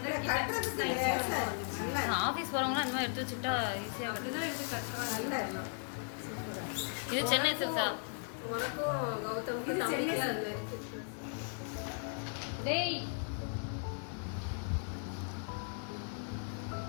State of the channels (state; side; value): silent; right; 53 dB below the other